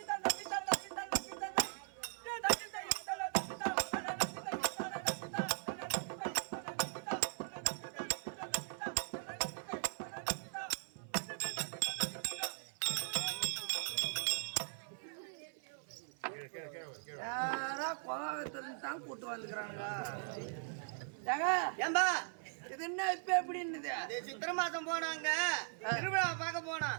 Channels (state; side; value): silent; left; 51 dB below the other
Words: தான் கூட்டு வந்துக்கிறாங்க. ஏம்பா இது என்ன இப்ப எப்படின்னு சித்திரை மாசம் போனாங்க திருவிழா பார்க்க போனா